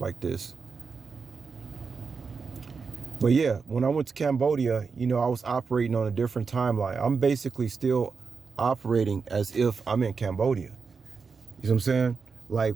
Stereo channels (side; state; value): left; quieter; 5.1 dB